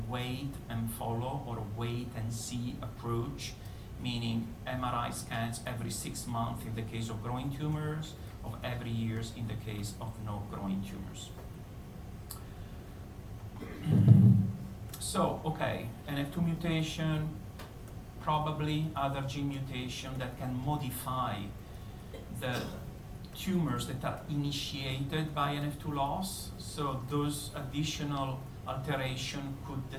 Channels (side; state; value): both; identical; correlation 1.00